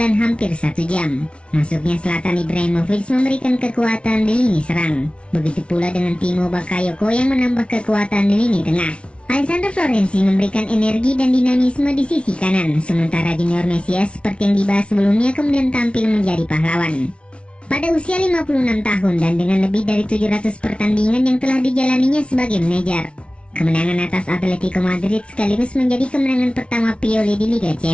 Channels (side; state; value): right; late; 0.060 ms